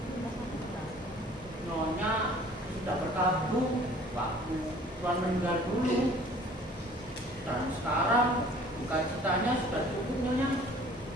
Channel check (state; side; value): normal; both; correlation 0.52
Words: Nyonya sudah berkabung waktu Tuhan meninggal dulu, dan sekarang bukan citanya sudah cukup, Nyonya.